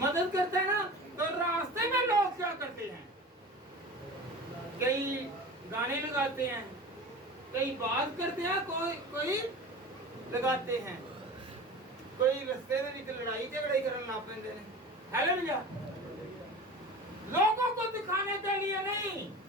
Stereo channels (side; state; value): both; normal; correlation 0.35